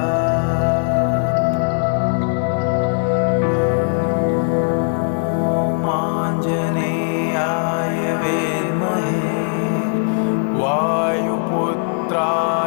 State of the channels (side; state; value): right; silent; digital silence